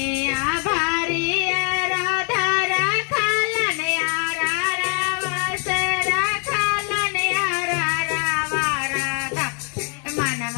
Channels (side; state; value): right; quieter; 36.8 dB